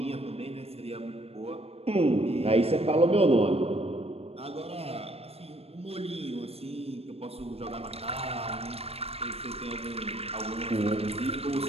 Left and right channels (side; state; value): left; late; 0.29 ms